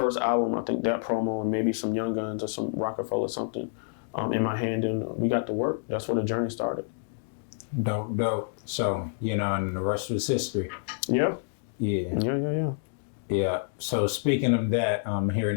album, I think that promo, and maybe some Young Guns or some Rockefeller something in my hand, and we got to work. That's where the journey started. Dope. So, and the rest was history. Yeah. Yeah. So speaking of that,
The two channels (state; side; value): silent; right; digital silence